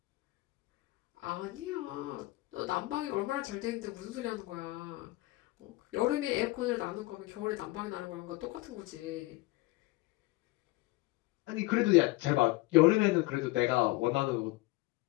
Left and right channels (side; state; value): right; quieter; 20.7 dB